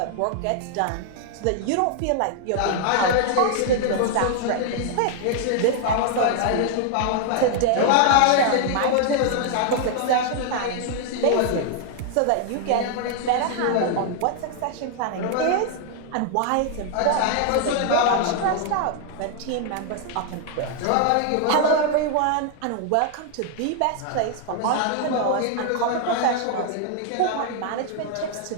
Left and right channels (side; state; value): both; different; correlation 0.00